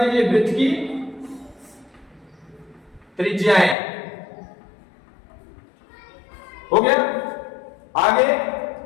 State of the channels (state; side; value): drops out; right; at 3.8 s